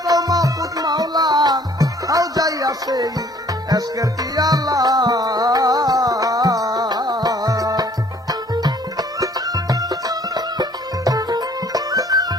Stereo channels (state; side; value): normal; both; correlation 0.57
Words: চাও মাহফুজ মাওলা হাও যাইয়া সেই এসকের পিয়ালা